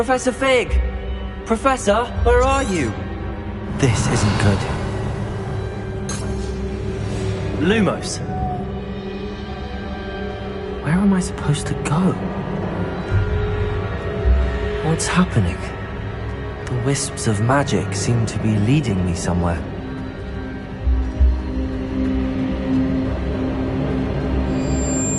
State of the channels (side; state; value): both; identical; correlation 1.00